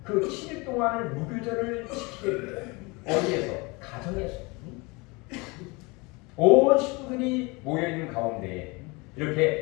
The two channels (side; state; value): right; quieter; 26.6 dB